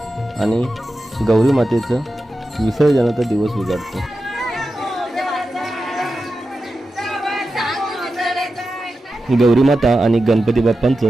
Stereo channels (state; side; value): normal; both; correlation 0.92